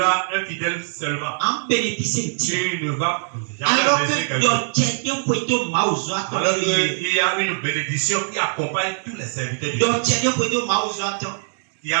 infidèle seulement. Tu ne vas jamais Alors blesser que quelqu'un. Alors qu'il y a une bénédiction qui accompagne tous les serviteurs de Dieu. Il y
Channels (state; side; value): silent; left; digital silence